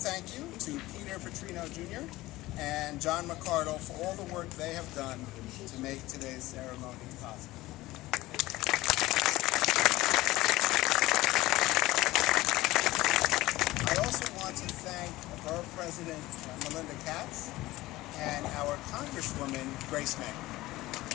you to Peter Petrino Jr. and John McCardle for all the work they have done to make today's ceremony possible. I also want to thank Borough President Melinda Katz and our Congresswoman Grace May.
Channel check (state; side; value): quieter; right; 18.1 dB